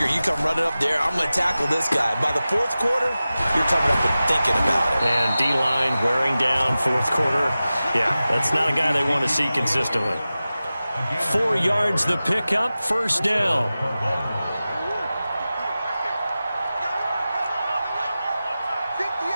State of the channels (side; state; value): both; inverted; correlation -0.95